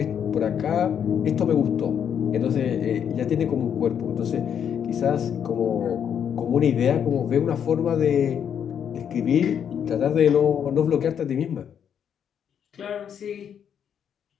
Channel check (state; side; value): quieter; right; 8.4 dB